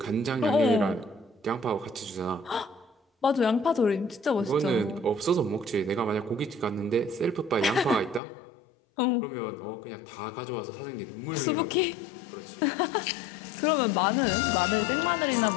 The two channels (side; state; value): right; drops out; at 8.2 s